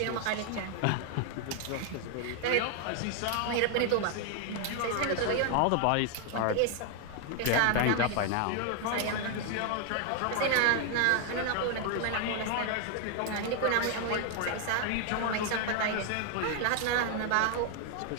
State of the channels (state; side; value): different; both; correlation 0.01